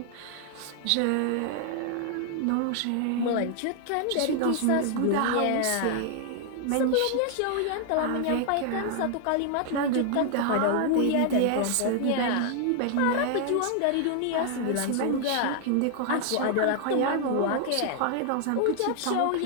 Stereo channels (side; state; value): both; different; correlation 0.00